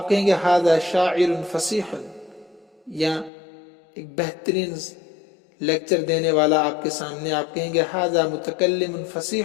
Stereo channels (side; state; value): right; drops out; at 3.3 s